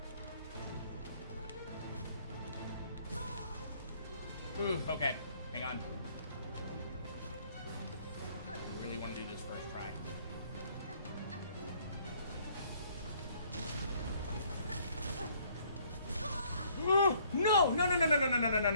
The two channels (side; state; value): both; inverted; correlation -0.63